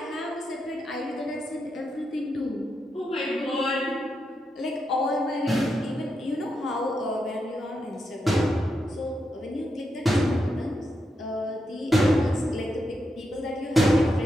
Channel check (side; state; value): both; normal; correlation 0.85